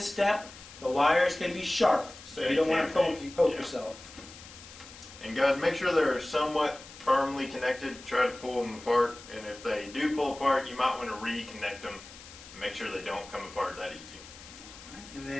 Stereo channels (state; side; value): noise; left; hiss, 17 dB below the sound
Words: step. The wires can be sharp, so you don't want to poke yourself. And guys, make sure they're somewhat firmly connected. Try to pull them apart, and if they do pull apart, you might want to reconnect them. Make sure they don't come apart that easy. And